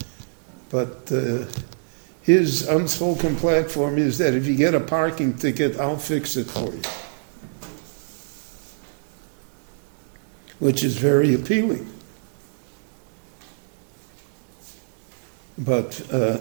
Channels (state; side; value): silent; left; digital silence